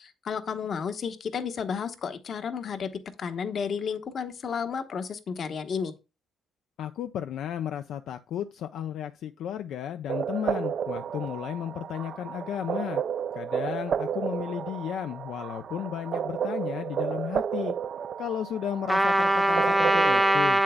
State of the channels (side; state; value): both; normal; correlation 0.78